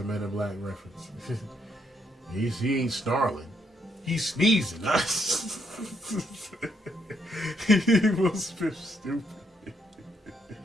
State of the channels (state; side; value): normal; both; correlation 0.75